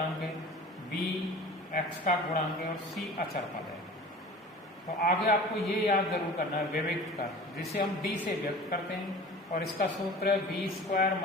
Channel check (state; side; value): normal; both; correlation 0.40